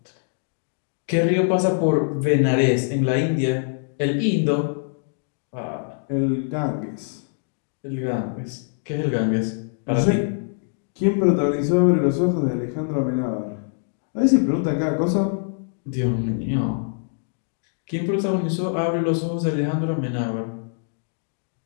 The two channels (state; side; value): silent; right; digital silence